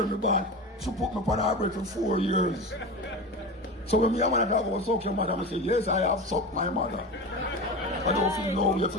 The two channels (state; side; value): normal; both; correlation 0.26